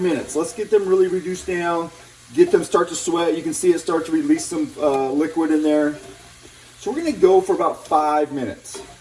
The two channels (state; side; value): identical; both; correlation 1.00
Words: Let's get them really reduced down. Get them start to sweat. You can see it start to release some liquid in there. So we're going to go for about 5 minutes.